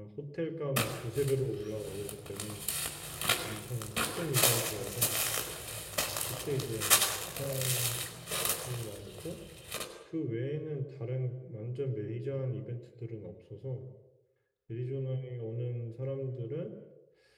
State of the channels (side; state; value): both; identical; correlation 1.00